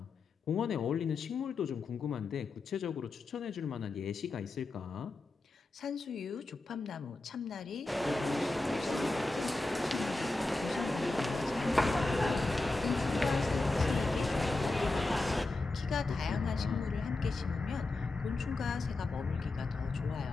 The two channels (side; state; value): right; quieter; 3.2 dB